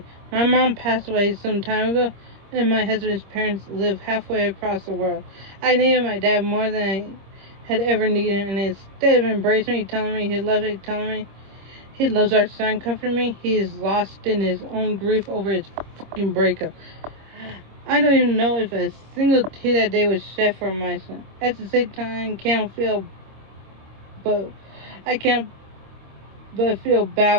My mom passed away some time ago, and my husband's parents live halfway across the world. I needed my dad more than I had ever needed him, and instead of embracing me, telling me he loves me, telling me he loves our son, comforting me, he is lost in his own grief over his fucking breakup. I don't even know if a single tear that day was shed for my son. At the same time, I can't but feel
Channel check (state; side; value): late; left; 26 ms